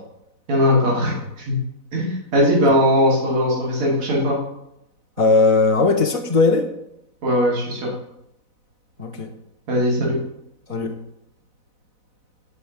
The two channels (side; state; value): left; late; 4.0 ms